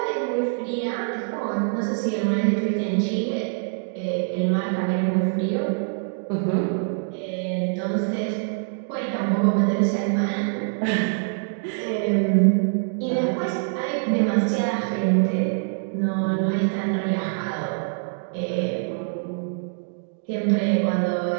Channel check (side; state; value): left; silent; digital silence